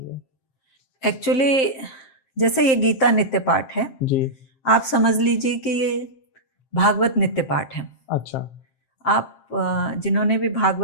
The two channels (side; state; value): right; late; 7.6 ms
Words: एक्चुअली जैसे ये गीता नित्य पाठ है जी। आप समझ लीजिए कि ये भागवत नित्य पाठ है। अच्छा। आप जिन्होंने भी